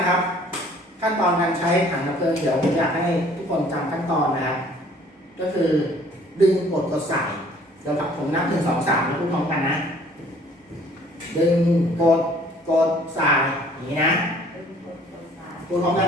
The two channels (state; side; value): normal; both; correlation 0.56